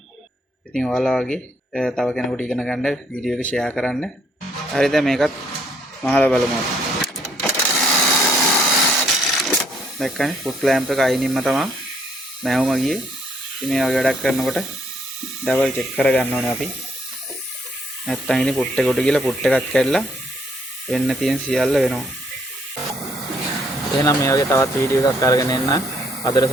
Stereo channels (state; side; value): normal; both; correlation 0.68